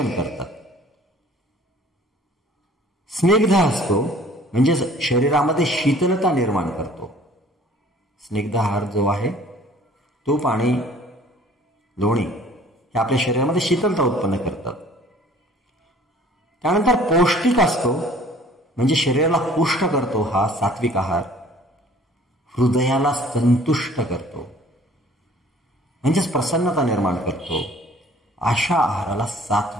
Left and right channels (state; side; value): normal; both; correlation 0.53